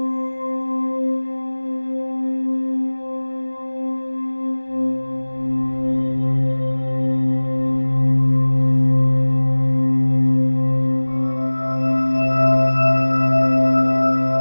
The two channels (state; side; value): inverted; both; correlation -1.00